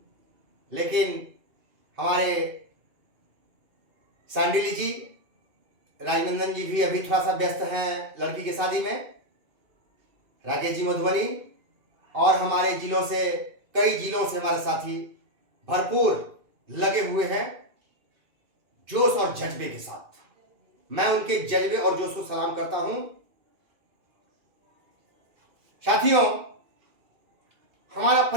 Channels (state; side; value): late; left; 2.6 ms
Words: लेकिन हमारे सांडिली जी, राजनंदन जी भी अभी थोड़ा सा व्यस्त हैं लड़की की शादी में। राकेश जी मधुबनी और हमारे जिलों से, कई जिलों से हमारे साथी भरपूर लगे हुए हैं जोश और जज्बे के साथ। मैं उनके जज्बे और जोश को सलाम करता हूं। साथियों, हमारा